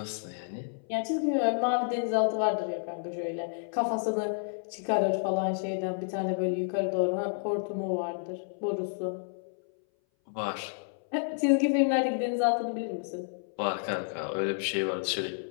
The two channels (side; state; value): right; silent; 58 dB below the other